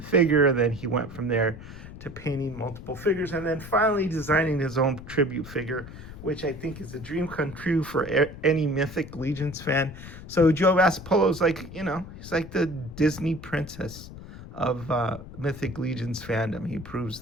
and then he went from there to painting multiple figures, and then finally designing his own tribute figure, which I think is a dream come true for any Mythic Legions fan. So Joe Vasipolo is like, he's like the Disney princess of Mythic Legions fandom. He proves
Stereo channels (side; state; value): left; noise; rumble, 14 dB below the sound